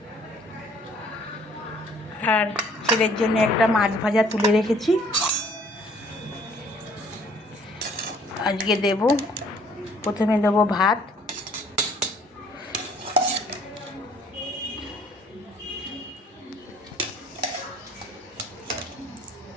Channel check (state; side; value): normal; both; correlation 0.59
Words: আর ছেলের জন্য একটা মাছ ভাজা তুলে রেখেছি। আজকে প্রথমে দেবো ভাত,